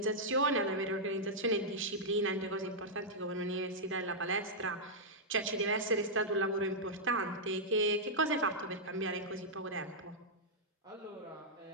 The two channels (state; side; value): normal; both; correlation -0.08